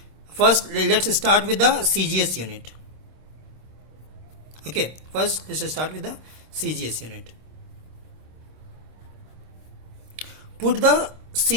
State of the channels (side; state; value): left; late; 26 ms